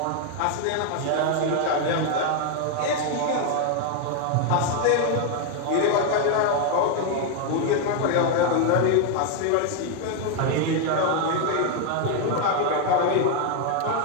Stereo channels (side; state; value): both; different; correlation 0.01